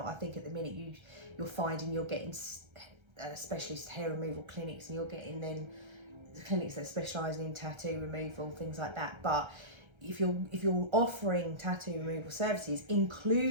I think at the minute you're finding you're getting specialist hair removal clinics, and you're getting then clinics that specialise in tattoo removal, things like that. But if you're offering tattoo removal services,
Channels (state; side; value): late; left; 1.3 ms